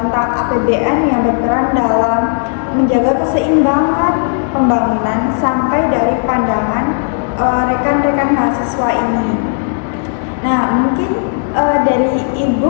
tentang APBN yang berperan dalam menjaga keseimbangan pembangunan, sampai dari pandangan rekan-rekan mahasiswa ini. Nah, mungkin dari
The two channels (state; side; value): silent; right; 62 dB below the other